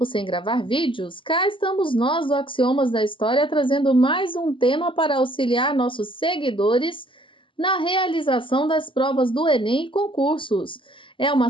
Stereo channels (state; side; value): late; right; 0.25 ms